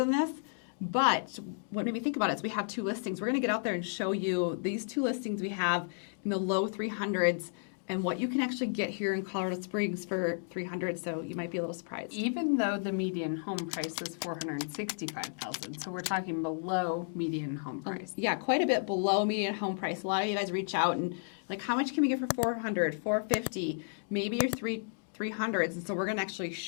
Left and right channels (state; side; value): silent; right; digital silence